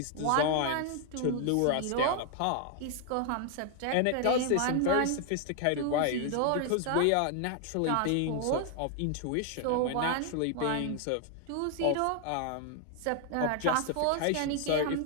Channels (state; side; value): different; both; correlation 0.00